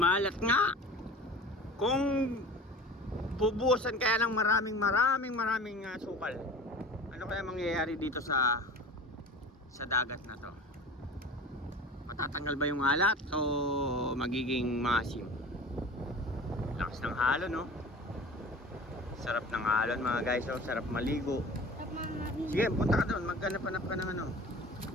nga. Kung bubuhusan kaya ng maraming sukal, ano kaya mangyayari dito sa dagat na to? Matatanggal ba yung alat o magiging masim? Lakas ng halo, no? Sarap ng alon mga guys, oh. Sarap maligo. Sige, punta ka doon, maghanap-hanap ka ng ano,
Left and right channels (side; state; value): both; normal; correlation 0.39